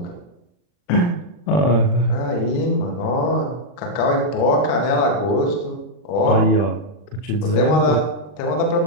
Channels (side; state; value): right; late; 40 ms